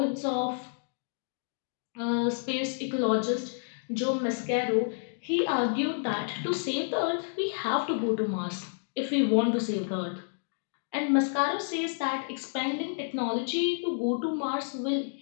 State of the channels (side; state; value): right; silent; digital silence